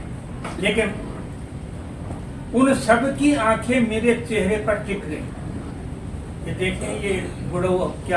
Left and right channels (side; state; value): both; identical; correlation 1.00